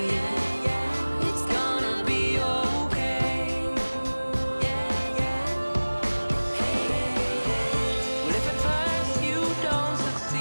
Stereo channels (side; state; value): both; inverted; correlation -1.00